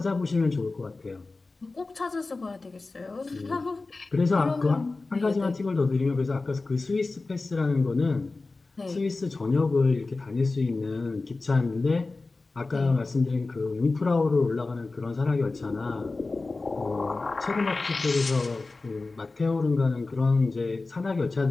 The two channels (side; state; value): right; quieter; 3.5 dB